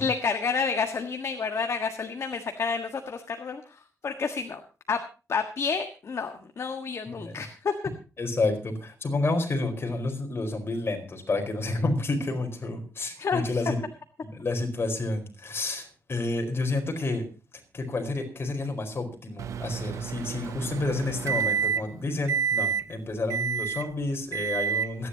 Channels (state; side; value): normal; both; correlation 0.55